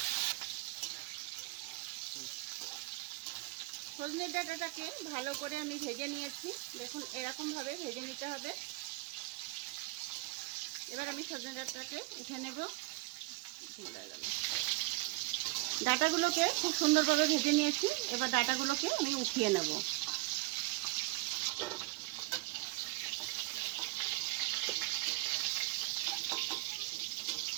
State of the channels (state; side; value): quieter; left; 23.2 dB